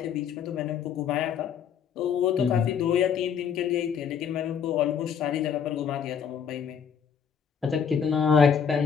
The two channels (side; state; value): right; quieter; 7.4 dB